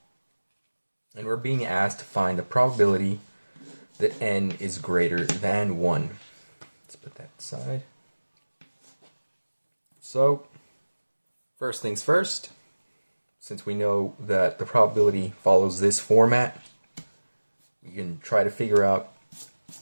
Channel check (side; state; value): both; inverted; correlation -1.00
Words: and we're being asked to find the probability that n is greater than 1. Let's put that aside. So, first things first, since we know that the probability follows this format, we can try to figure out